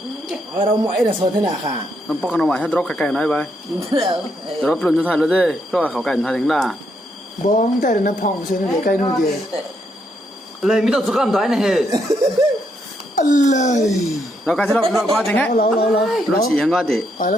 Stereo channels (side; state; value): both; normal; correlation 0.77